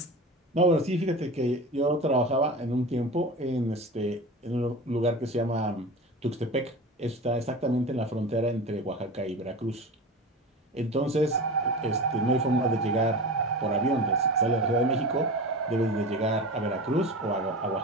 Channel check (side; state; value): both; normal; correlation 0.31